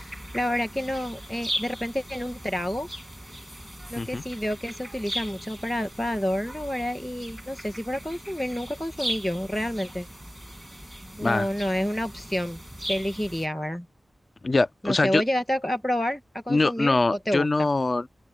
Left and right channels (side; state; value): both; normal; correlation 0.96